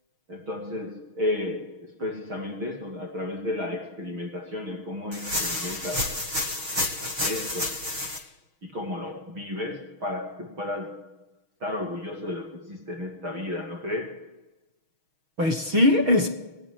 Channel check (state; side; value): late; left; 6.3 ms